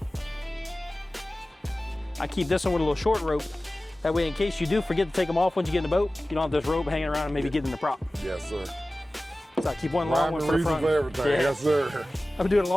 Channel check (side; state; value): both; normal; correlation 0.96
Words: I keep this one with a little short rope. That way, in case you do forget to take them off once you get in the boat, you don't have this rope hanging around and maybe get in the prop. Yes, sir. So I keep one long one for the front. For everything. Yeah. Yes, sir. I've been doing it a